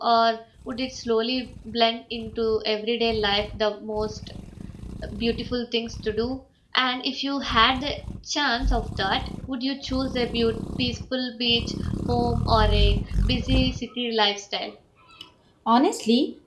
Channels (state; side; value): identical; both; correlation 1.00